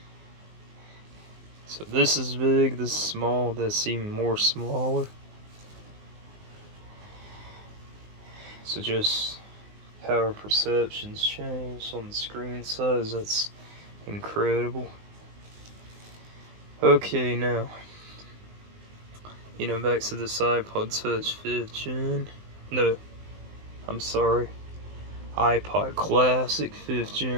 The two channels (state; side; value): late; left; 19 ms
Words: So this is big, this is small, that's even more smaller. So just how our perceptions change on the screen size, that's incredible. Okay, now, back to this iPod Touch 5th gen. No, I'm sorry. iPod Classic 5th